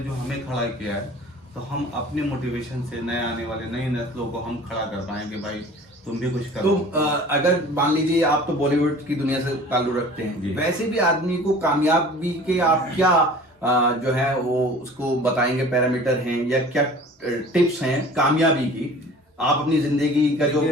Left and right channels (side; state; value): both; normal; correlation 0.44